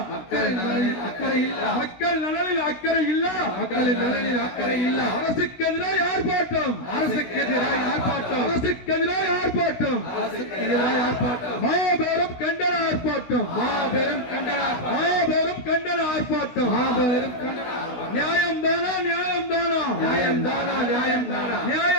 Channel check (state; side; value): late; right; 17 ms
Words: மக்கள் நலனில் அக்கறை இல்ல, மக்கள் நலனில் அக்கறை இல்ல, மக்களின் நலனில் அக்கறை இல்ல. அரசுக்கு எதிராக ஆர்ப்பாட்டம், அரசுக்கு எதிராக ஆர்ப்பாட்டம், அரசுக்கு எதிராக ஆர்ப்பாட்டம், அரசுக்கு எதிராக ஆர்ப்பாட்டம். மாபெரும் கண்டன ஆர்ப்பாட்டம், மாபெரும் கண்டன, மாபெரும் கண்டன ஆர்ப்பாட்டம், மாபெரும் கண்டன. நியாயம் தானா, நியாயம் தானா, நியாயம் தானா, நியாயம் தானா,